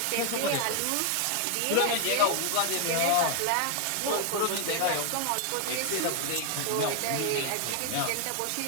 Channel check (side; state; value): both; different; correlation 0.00